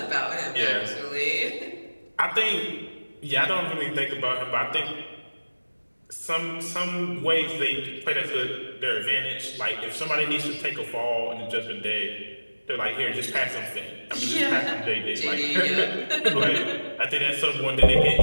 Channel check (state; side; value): inverted; both; correlation -1.00